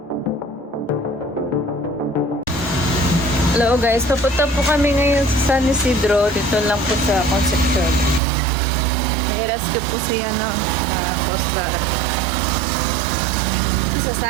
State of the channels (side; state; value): left; drops out; at 8.2 s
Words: Hello guys, papunta po kami ngayon sa San Isidro. Dito lang po sa Concepcion. Nai-rescue po siya Coast Guard.